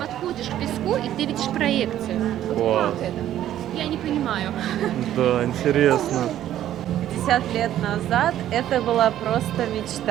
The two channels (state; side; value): quieter; left; 12.0 dB